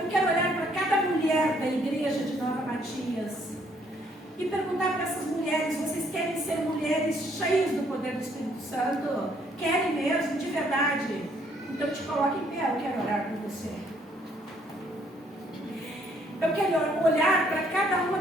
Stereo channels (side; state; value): both; normal; correlation 0.66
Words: quero olhar para cada mulher da igreja de Nova Matias e perguntar para essas mulheres: vocês querem ser mulheres cheias do poder do Espírito Santo? Querem mesmo, de verdade? Então te coloque em pé, eu quero orar por você. Eu quero olhar para cada uma